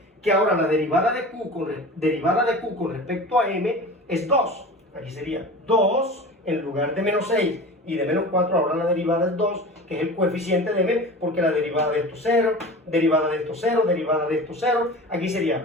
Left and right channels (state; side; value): normal; both; correlation 0.35